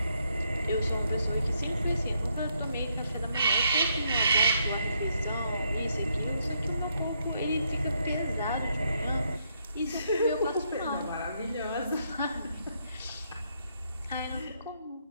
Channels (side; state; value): both; inverted; correlation -0.75